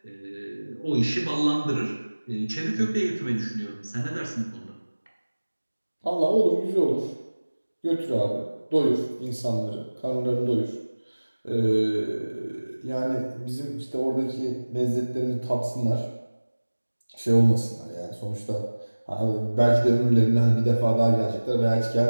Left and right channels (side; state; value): both; inverted; correlation -1.00